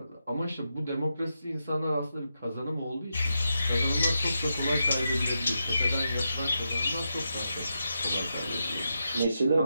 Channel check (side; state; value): both; inverted; correlation -0.86